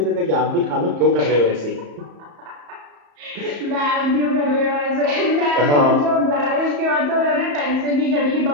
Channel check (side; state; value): left; late; 34 ms